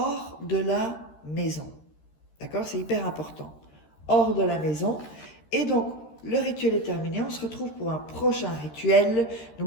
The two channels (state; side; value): late; right; 13 ms